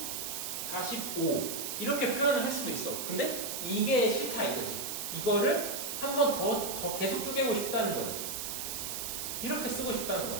45 이렇게 표현을 할 수도 있어. 근데 이게 싫다 이거지. 이거를 한 번 더 계속 쪼개고 싶다는 거지. 이렇게 쓰고 싶다는 거야.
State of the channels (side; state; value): right; noise; hiss, 4 dB below the sound